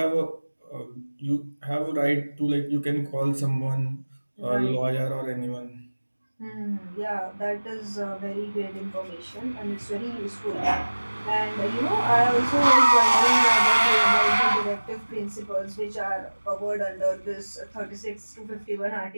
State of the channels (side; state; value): both; inverted; correlation -1.00